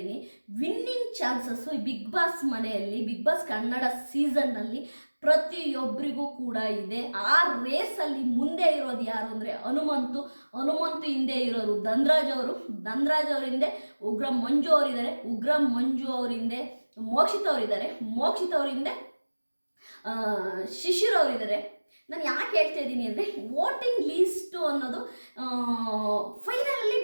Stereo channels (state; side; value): inverted; both; correlation -1.00